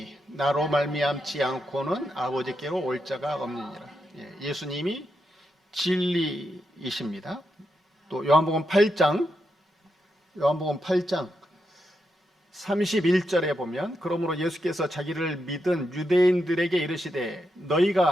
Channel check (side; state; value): both; normal; correlation 0.84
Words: 나로 말미암지 않고는 아버지께로 올 자가 없느니라. 예수님이 진리이십니다. 또 요한복음 8장 31절에 보면 그러므로 예수께서 자기를 믿은 유대인들에게 이르시되